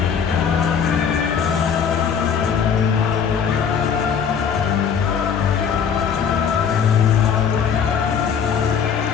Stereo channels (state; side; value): quieter; right; 7.1 dB